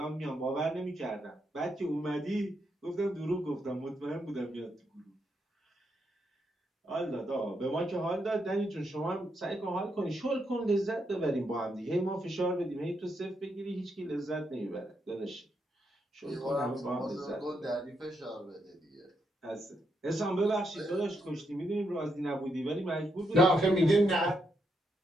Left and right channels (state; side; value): normal; both; correlation 0.80